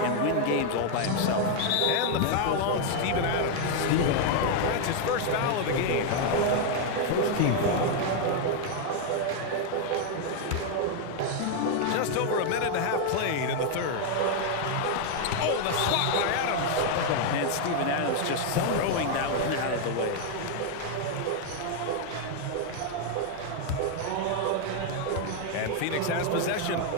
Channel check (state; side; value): different; both; correlation 0.00